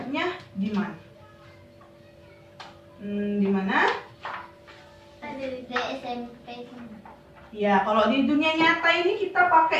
di mana? Di mana? Ada di SMP. Ya, kalau di dunia nyata ini kita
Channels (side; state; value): both; identical; correlation 1.00